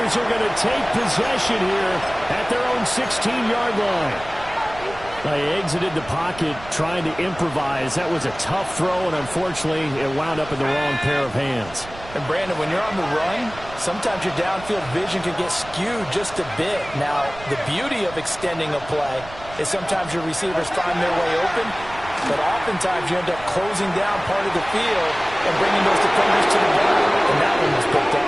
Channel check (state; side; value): noise; right; rumble, 17 dB below the sound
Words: are going to take possession here at their own 16-yard line. They exited the pocket trying to improvise. That was a tough throw, and unfortunately, it wound up in the wrong pair of hands. And Brandon, when you're on the run, sometimes your downfield vision can get skewed just a bit. Now, the beauty of extending a play is sometimes your receivers find their way open, but oftentimes you end up closing down part of the field and bringing those defenders to the ground, and that one was picked